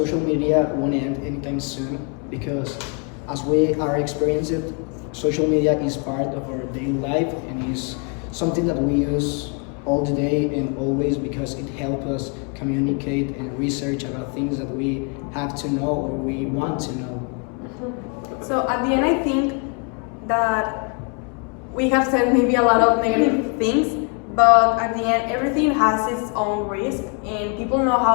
media won't end anytime soon because as we are experiencing it, social media is part of our daily life and is something that we use all the day and always because it helps us communicate and research about things that we have to know or we want to know. So at the end, I think that we have said maybe a lot of negative things, but at the end, everything has its own risk and people know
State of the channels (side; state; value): right; quieter; 36.5 dB